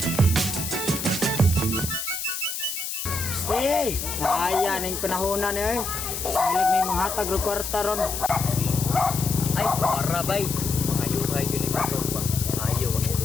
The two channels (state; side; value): noise; left; hiss, 5 dB below the sound